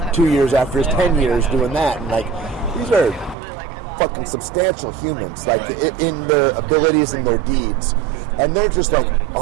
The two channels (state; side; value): drops out; left; at 3.4 s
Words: 2 years after his 10 years doing that. And like, these are fucking substantial humans, like in their abilities and their deeds, and they're just like,